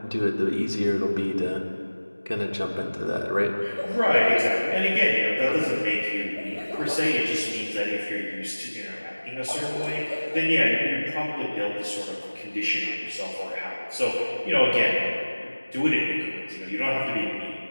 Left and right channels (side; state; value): both; inverted; correlation -1.00